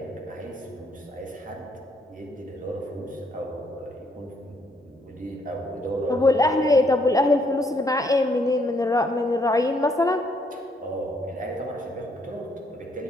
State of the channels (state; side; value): normal; both; correlation 0.70